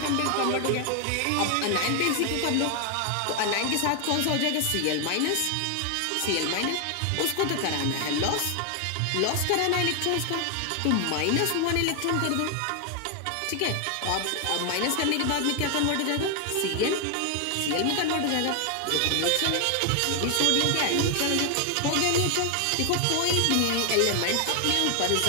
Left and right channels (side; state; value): both; different; correlation 0.00